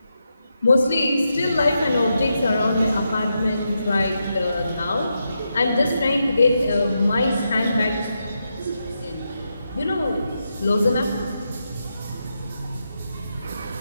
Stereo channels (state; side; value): inverted; both; correlation -0.85